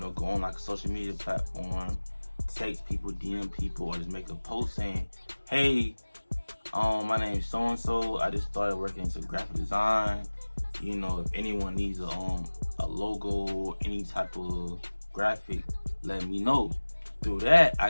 go on like a social media platform, text people, DM people, or just make a post saying, hey, my name is so-and-so. I just started working in some graphic design. If anyone needs a logo, any type of graphic, let me know. Through that, I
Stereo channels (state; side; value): inverted; both; correlation -1.00